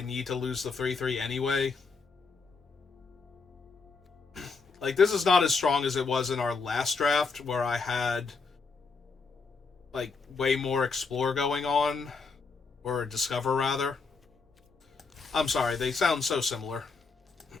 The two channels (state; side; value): quieter; right; 4.6 dB